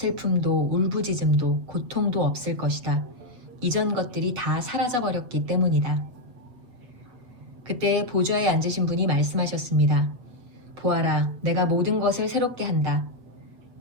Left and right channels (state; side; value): late; left; 8.2 ms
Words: 울부짖음도 고통도 없을 것이다. 이전 것들이 다 사라져버렸기 때문이다. 그때 보좌에 앉으신 분이 말씀하셨습니다. 보아라, 내가 모든 것을 새롭게 한다.